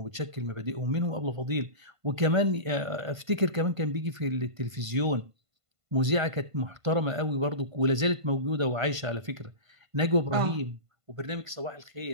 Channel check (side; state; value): left; late; 1.5 ms